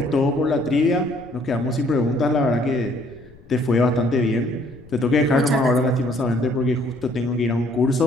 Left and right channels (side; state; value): left; noise; rumble, 23 dB below the sound